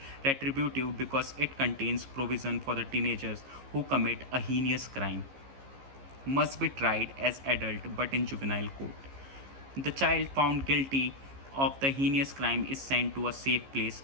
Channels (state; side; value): late; left; 15 ms